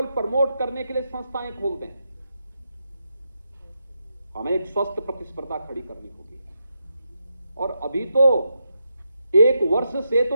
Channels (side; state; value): both; inverted; correlation -0.84